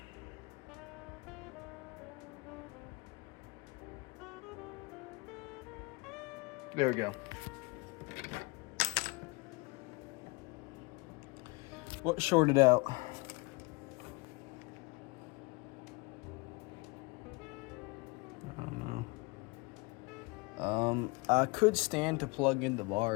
There we go. What shorted out? I don't know. I could stand to plug in the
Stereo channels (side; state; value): right; quieter; 26.9 dB